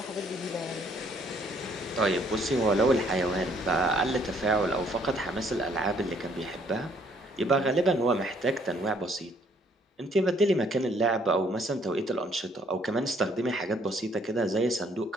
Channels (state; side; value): normal; both; correlation 0.64